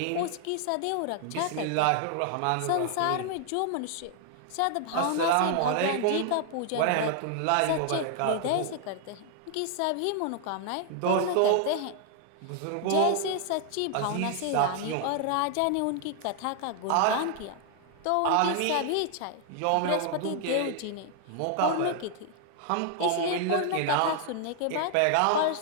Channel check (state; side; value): different; both; correlation 0.00